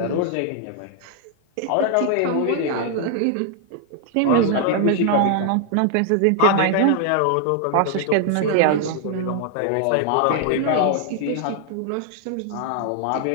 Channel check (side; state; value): both; different; correlation 0.00